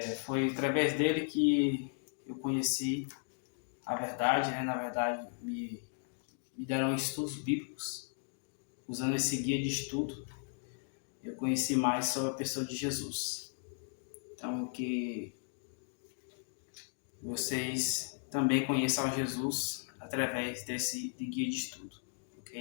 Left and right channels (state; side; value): silent; right; 54 dB below the other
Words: Foi através dele que eu conheci a verdade, Na verdade, me deram estudos bíblicos. Usando esse guia de estudo, eu conheci mais sobre a pessoa de Jesus. Então, que vocês também conheçam Jesus através desse guia de estudo,